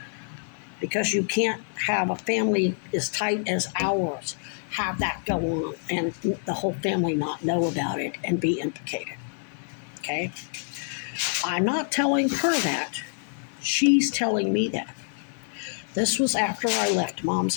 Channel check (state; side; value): silent; right; 59 dB below the other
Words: Because you can't have a family as tight as ours have that go on and the whole family not know about it and be implicated. Okay? I'm not telling her that. She's telling me that. This was after I left Mom's